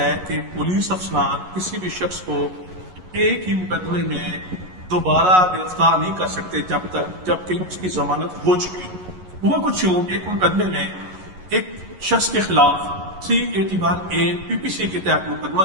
کہ پولیس افسران کسی بھی شخص کو ایک ہی مقدمے میں دوبارہ گرفتار نہیں کر سکتے جبکہ اس کی ضمانت ہو چکی ہو۔ وہ کچھ یوں ایک مقدمے میں ایک شخص کے خلاف 381A PPC کے تحت مقدمہ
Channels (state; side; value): late; left; 11 ms